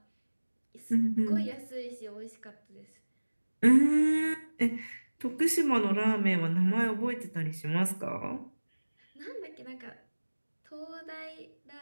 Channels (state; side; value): inverted; both; correlation -1.00